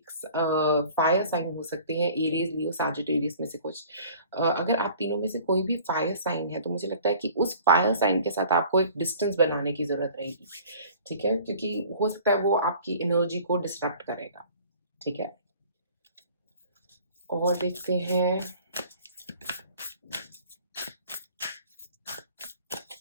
फायर साइन हो सकते हैं, एरीज़, लियो, सैजिटेरियस में से कुछ। अगर आप तीनों में से कोई भी फायर साइन है, तो मुझे लगता है कि उस फायर साइन के साथ आपको एक डिस्टेंस बनाने की ज़रूरत रहेगी, ठीक है? क्योंकि हो सकता है वो आपकी एनर्जी को डिस्ट्रैक्ट करेगा, ठीक है? और देखते हैं।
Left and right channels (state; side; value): inverted; both; correlation -0.48